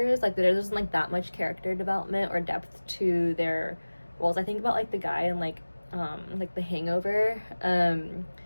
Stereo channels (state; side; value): inverted; both; correlation -1.00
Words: Like there wasn't like that much character development or depth to their roles. I think about like the guy in like The Hangover,